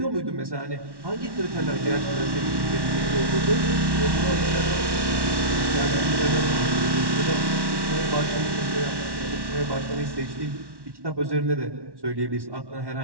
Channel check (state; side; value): late; left; 1.1 ms